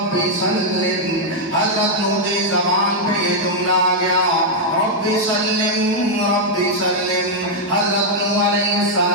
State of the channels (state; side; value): normal; both; correlation -0.03